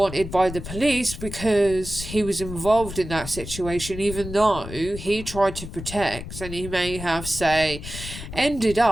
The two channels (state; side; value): noise; left; rumble, 10 dB below the sound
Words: by the police because he was involved in that situation, even though he tried to protect, and he may have, say, ended